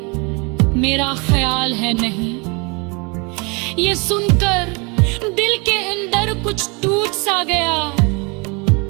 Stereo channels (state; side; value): quieter; left; 30.3 dB